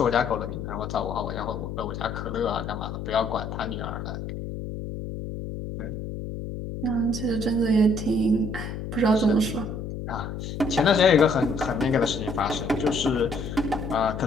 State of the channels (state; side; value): noise; left; hum, 7 dB below the sound